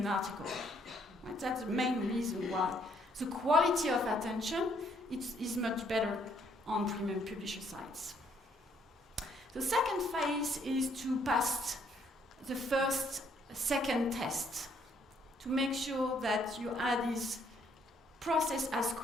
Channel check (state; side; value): normal; both; correlation 0.68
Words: article. Right? That's the main reason why. The quality of attention is much better on premium publisher sites. The second phase is to pass the second test, to make sure that your ad is processed as